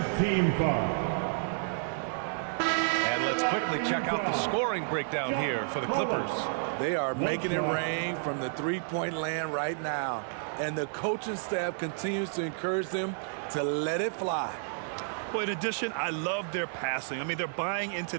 team foul. And let's quickly check out the scoring breakdown here for the Clippers. They are making it rain from the three-point land right now. And the coaching staff continues to encourage them to let it fly. Well, in addition, I love their passing. I mean, they're buying into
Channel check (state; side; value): silent; left; 56 dB below the other